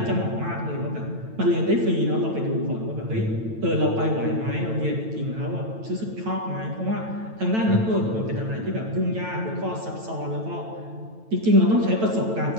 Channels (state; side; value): late; left; 9.0 ms